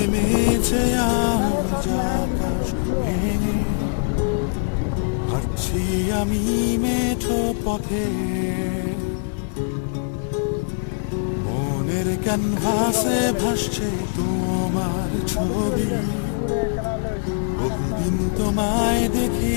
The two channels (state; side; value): silent; right; digital silence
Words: আজ আকাশ ভেঙে, হাঁটছি আমি মেঠো পথে, মনের ক্যানভাসে ভাসছে তোমার ছবি। বহুদিন তোমায় দেখি